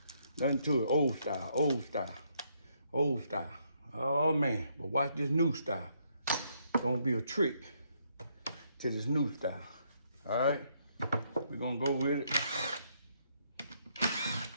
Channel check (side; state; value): both; inverted; correlation -0.73